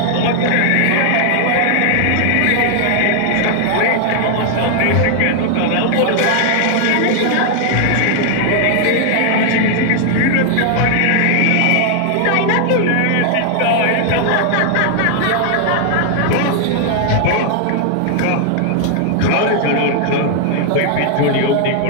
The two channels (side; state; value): both; different; correlation 0.00